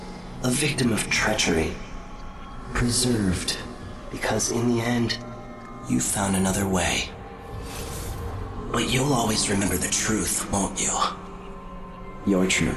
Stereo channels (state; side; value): identical; both; correlation 1.00